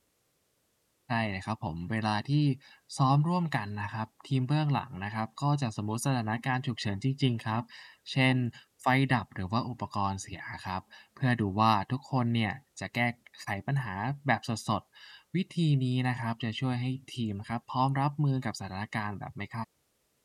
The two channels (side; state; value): both; identical; correlation 1.00